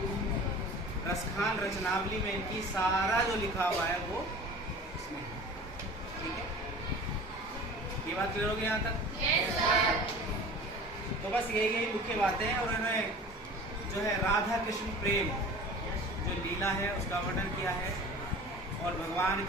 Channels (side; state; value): both; normal; correlation 0.40